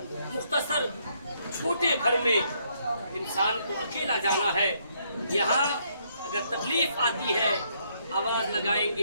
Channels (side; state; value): both; inverted; correlation -0.71